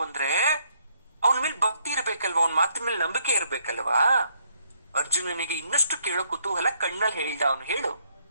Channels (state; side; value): inverted; both; correlation -0.70